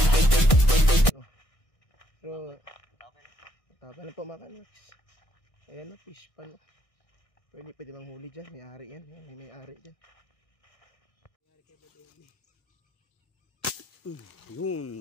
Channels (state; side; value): late; right; 1.6 ms